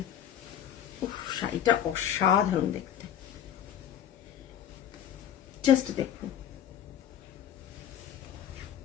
শাড়িটা অসাধারণ দেখতে, জাস্ট দেখুন।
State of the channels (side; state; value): right; quieter; 9.8 dB